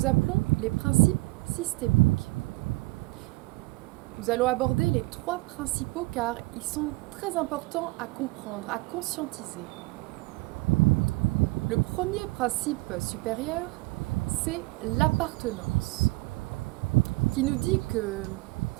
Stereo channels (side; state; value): left; quieter; 24.0 dB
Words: appelons les principes systémiques. Nous allons aborder les 3 principaux car ils sont très importants à comprendre, à conscientiser. Le premier principe supérieur, c'est l'appartenance, qui nous dit que